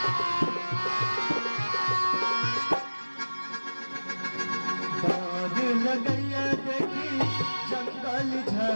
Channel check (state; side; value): inverted; both; correlation -1.00